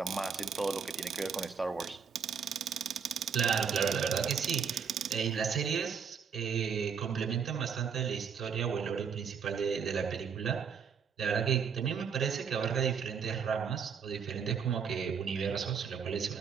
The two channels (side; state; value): left; quieter; 6.6 dB